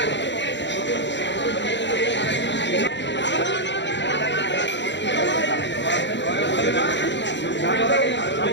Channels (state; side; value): late; right; 0.52 ms